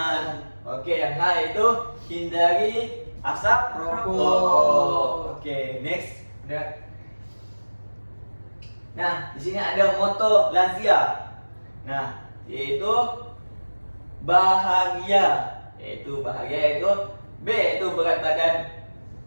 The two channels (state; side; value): inverted; both; correlation -1.00